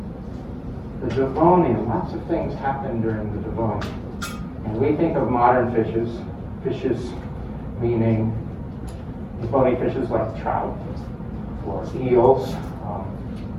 the Devonian, lots of things happened during the Devonian. And we think of modern fishes meaning bony fishes like trout, or eels,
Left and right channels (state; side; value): identical; both; correlation 1.00